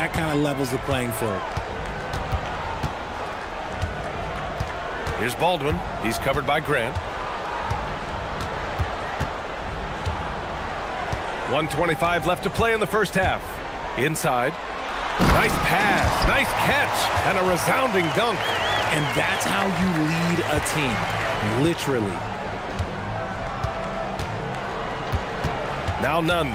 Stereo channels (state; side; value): identical; both; correlation 1.00